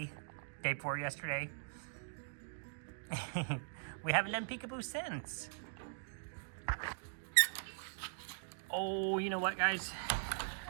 Day 4 yesterday? We haven't done Peekaboo since. Oh, you know what, guys?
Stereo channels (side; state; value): left; silent; digital silence